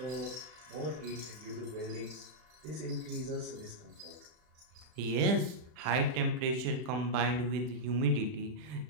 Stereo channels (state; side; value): late; left; 40 ms